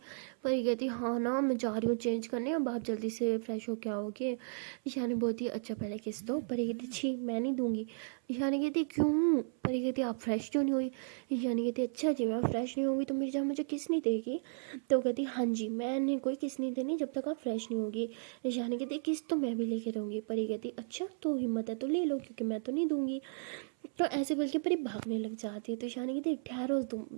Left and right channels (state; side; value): silent; left; 55 dB below the other